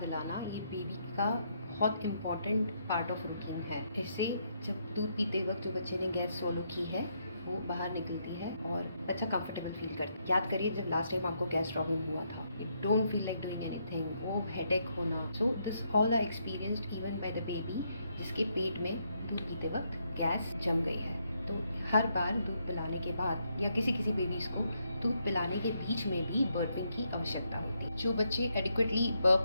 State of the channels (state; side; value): inverted; both; correlation -0.77